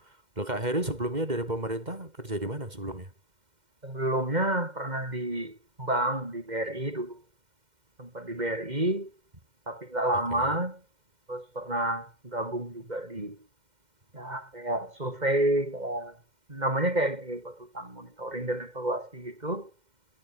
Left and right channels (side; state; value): left; late; 2.1 ms